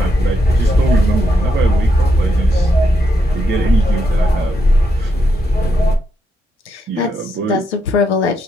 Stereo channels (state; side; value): normal; both; correlation 0.80